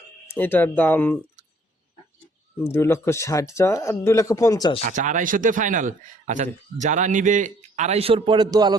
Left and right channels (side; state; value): both; normal; correlation 0.61